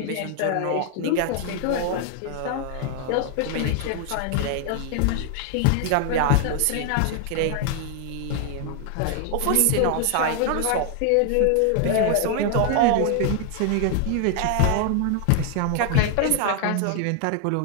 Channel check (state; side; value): different; both; correlation 0.00